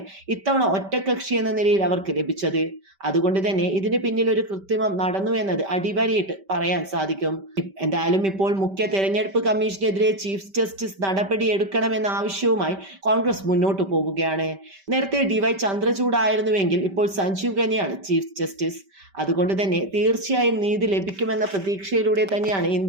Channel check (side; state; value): left; late; 5.1 ms